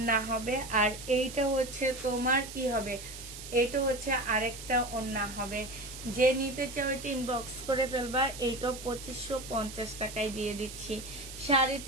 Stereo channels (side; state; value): right; noise; hiss, 12 dB below the sound